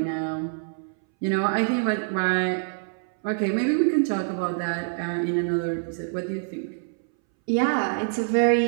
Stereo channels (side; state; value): left; silent; 61 dB below the other